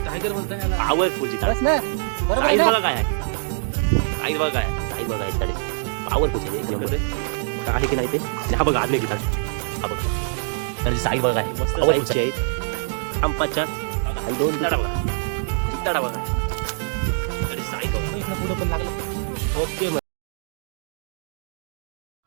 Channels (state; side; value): silent; left; digital silence